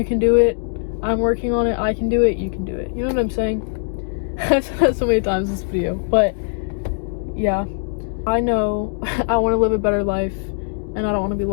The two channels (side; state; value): right; silent; 65 dB below the other